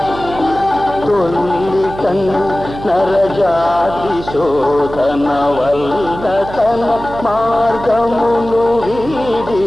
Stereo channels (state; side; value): noise; right; hum, 12 dB below the sound